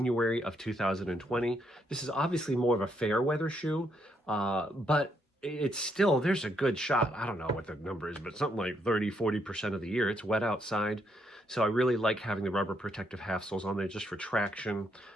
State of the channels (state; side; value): normal; both; correlation 0.75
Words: of 2020. This is obviously more of a fair weather shoe, but it's still, there's a good shot. I don't know what the number is, but something like 30–40% of the year, it's wet outside. So I really like having the rubber protective half soles on there just for traction.